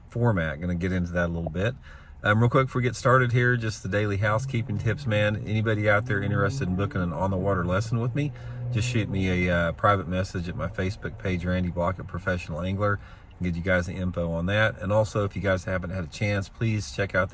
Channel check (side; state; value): both; identical; correlation 1.00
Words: format. Going to get into that a little bit. Real quick before we get started here, just the daily housekeeping tips, man. Anybody out there interested in booking an on-the-water lesson with me, just shoot me a private message at my Facebook page, Randy Blockett Professional Angler, and get you guys the info on that. And also, if you guys haven't had a chance, please check out